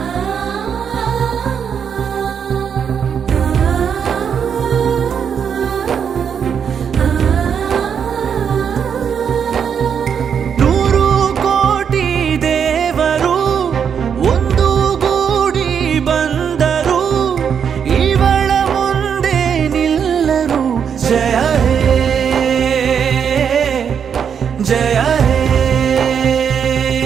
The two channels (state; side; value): quieter; left; 7.5 dB